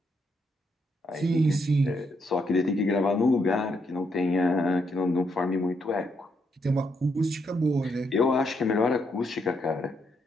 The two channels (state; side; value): normal; both; correlation 0.77